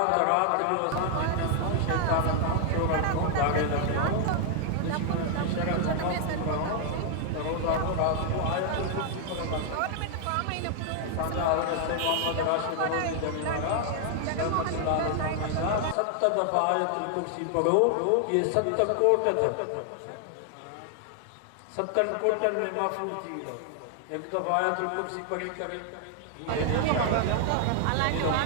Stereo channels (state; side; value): different; both; correlation 0.00